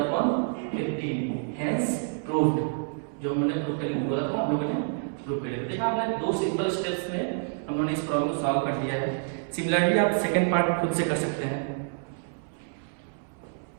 hence proved। जो हमने प्रूव करने को बोला था हम लोगों ने प्रूव कर लिया। देखा आपने, दो सिंपल स्टेप्स में हम लोगों ने इस प्रॉब्लम को सॉल्व कर दिया है। सिमिलरली आप सेकंड पार्ट खुद से कर सकते हैं।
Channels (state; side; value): silent; left; 59 dB below the other